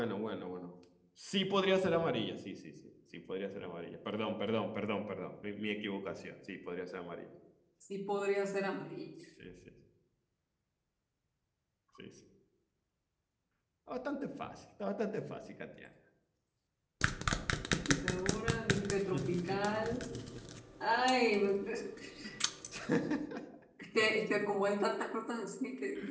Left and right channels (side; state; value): both; identical; correlation 1.00